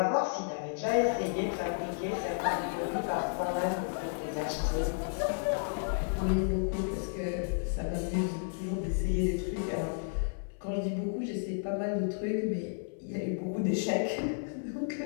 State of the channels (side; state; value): right; silent; 56 dB below the other